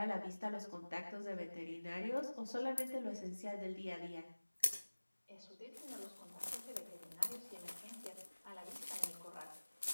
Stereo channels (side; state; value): both; inverted; correlation -1.00